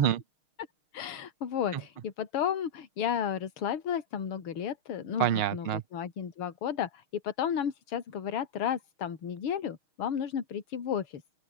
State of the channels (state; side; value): late; right; 6.4 ms